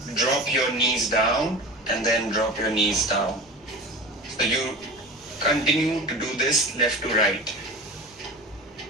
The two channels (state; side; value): normal; both; correlation 0.33